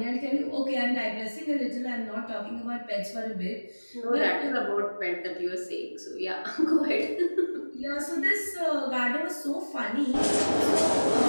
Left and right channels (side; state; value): both; inverted; correlation -1.00